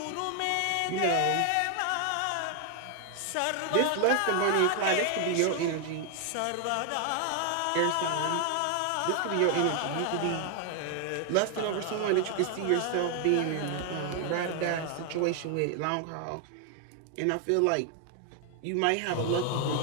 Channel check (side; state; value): both; different; correlation 0.00